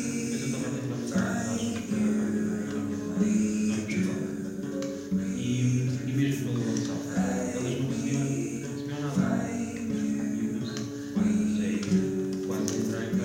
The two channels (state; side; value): identical; both; correlation 1.00